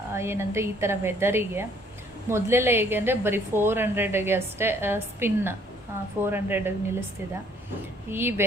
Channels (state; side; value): normal; both; correlation 0.62